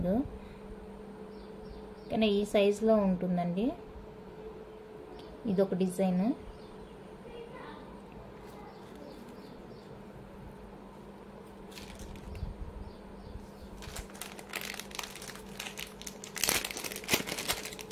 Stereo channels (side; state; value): both; identical; correlation 1.00